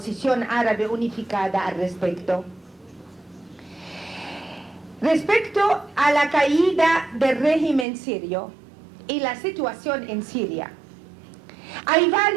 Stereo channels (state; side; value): drops out; left; at 7.9 s